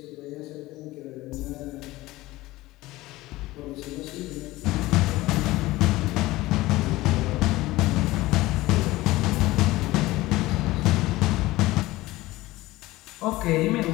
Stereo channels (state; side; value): quieter; right; 18.5 dB